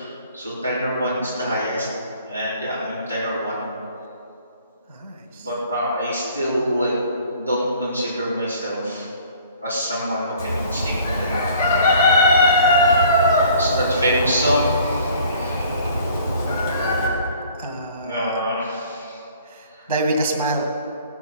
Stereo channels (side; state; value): both; inverted; correlation -0.54